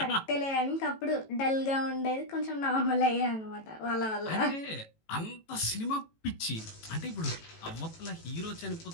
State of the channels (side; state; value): right; late; 18 ms